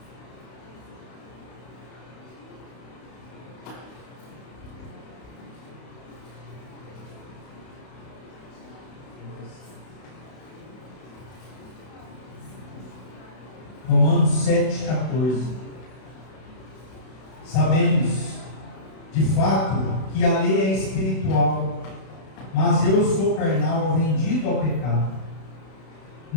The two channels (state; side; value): late; right; 32 ms